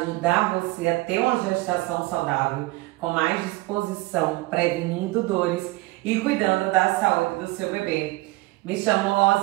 você a ter uma gestação saudável, com mais disposição, prevenindo dores e cuidando da saúde do seu bebê. Me chamo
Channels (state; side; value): quieter; left; 21.2 dB